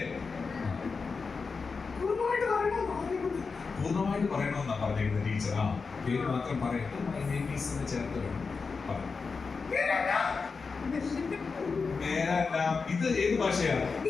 പൂർണ്ണമായിട്ട് പറയണമെന്നാ പറഞ്ഞിരുന്നത് ടീച്ചർ. ആ പേര് മാത്രം പറയട്ടെ. My name is എന്ന് ചേർത്ത് വേണം. ഇത് ഏത് ഭാഷയാണ്?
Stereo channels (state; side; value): quieter; right; 4.8 dB